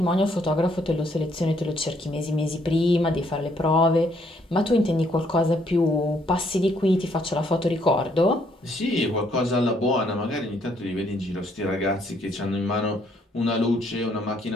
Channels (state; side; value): normal; both; correlation 0.69